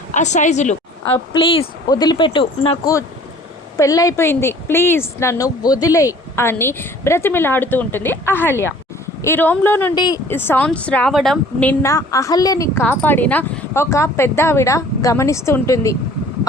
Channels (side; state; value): both; normal; correlation 0.51